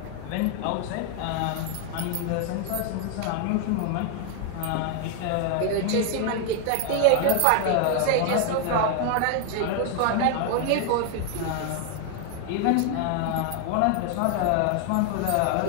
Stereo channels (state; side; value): different; both; correlation 0.00